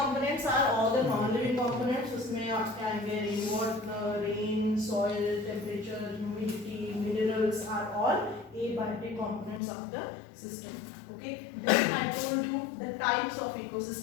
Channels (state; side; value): drops out; right; at 9.6 s